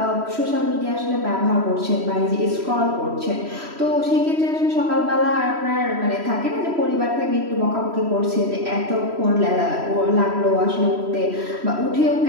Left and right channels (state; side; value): late; left; 3.1 ms